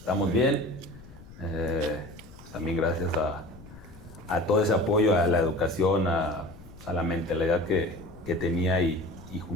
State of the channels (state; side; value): noise; left; rumble, 19 dB below the sound